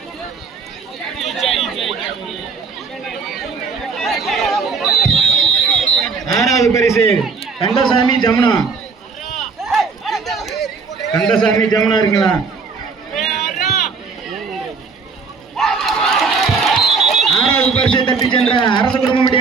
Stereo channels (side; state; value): left; quieter; 4.9 dB